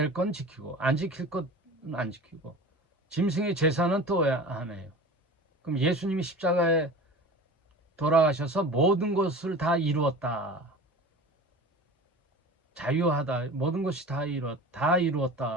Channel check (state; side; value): normal; both; correlation 0.36